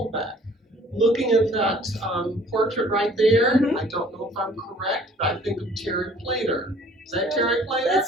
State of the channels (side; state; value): both; normal; correlation 0.54